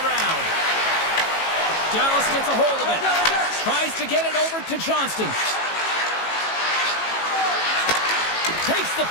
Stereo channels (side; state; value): right; late; 18 ms